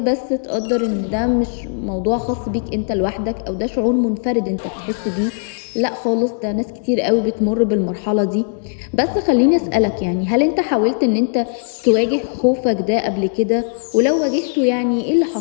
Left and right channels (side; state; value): right; silent; digital silence